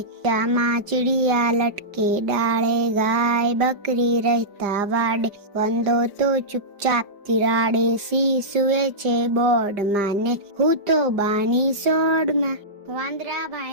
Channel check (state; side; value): late; left; 5.0 ms